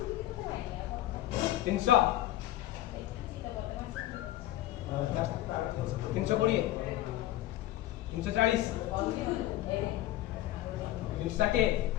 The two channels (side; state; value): right; quieter; 14.7 dB